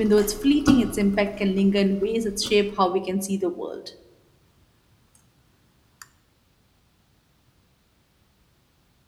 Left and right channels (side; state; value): both; identical; correlation 1.00